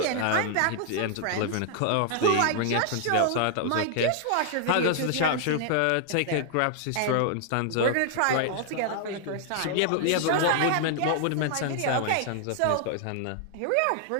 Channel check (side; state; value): both; different; correlation 0.00